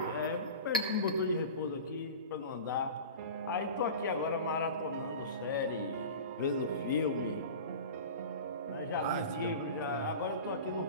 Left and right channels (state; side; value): inverted; both; correlation -0.33